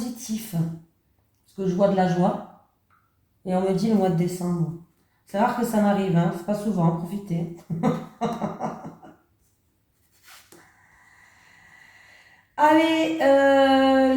Parce que je vois de la joie. Et on me dit le mois de décembre. C'est rare que ça m'arrive, hein. C'est pas souvent, profitez. Allez,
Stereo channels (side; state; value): both; identical; correlation 1.00